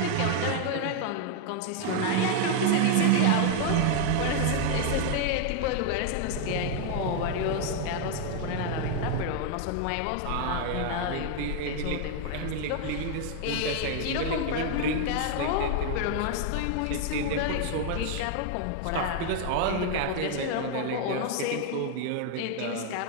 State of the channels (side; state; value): both; different; correlation 0.00